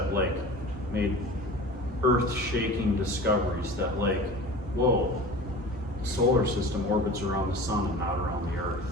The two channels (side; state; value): both; normal; correlation 0.38